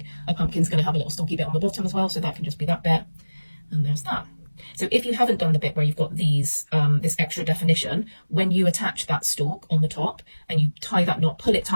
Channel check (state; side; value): inverted; both; correlation -1.00